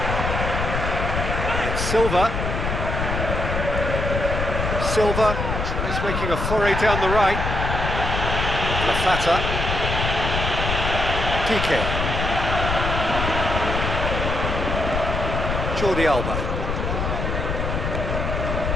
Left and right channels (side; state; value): left; noise; rumble, 2 dB below the sound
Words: It's Silva. Silva tries making a foray down the right. Lafata. Piqué. Jordi Alba.